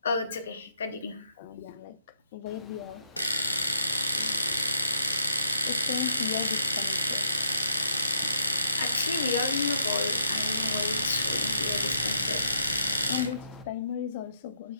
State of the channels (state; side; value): inverted; both; correlation -0.76